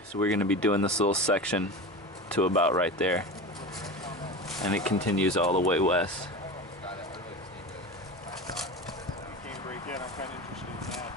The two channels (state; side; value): normal; both; correlation 0.28